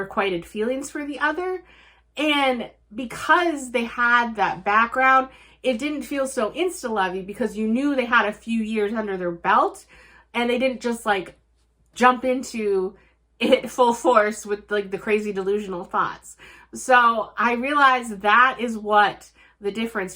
feelings for the other. And because they had that background, it didn't feel so insta-lovey because you knew they had a few years under their belt, and they didn't just, like, jump into it full force with, like, the crazy delusional thoughts. So I realized that is what the difference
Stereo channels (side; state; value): both; identical; correlation 1.00